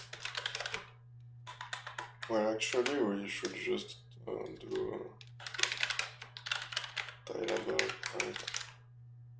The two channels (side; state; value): both; identical; correlation 1.00